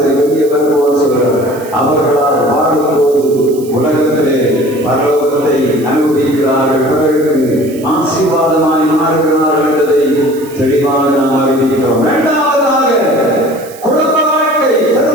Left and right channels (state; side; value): noise; right; hiss, 20 dB below the sound